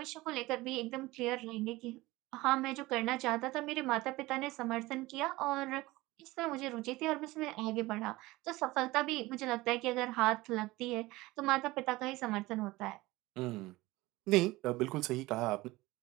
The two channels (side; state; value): left; quieter; 19.8 dB